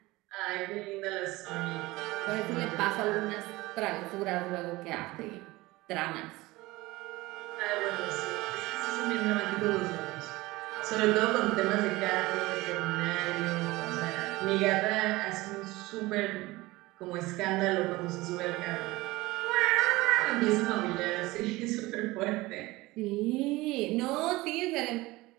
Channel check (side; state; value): left; quieter; 20.3 dB